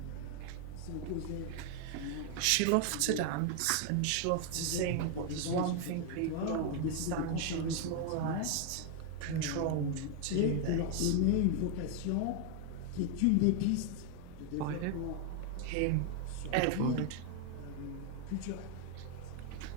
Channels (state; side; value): different; both; correlation 0.01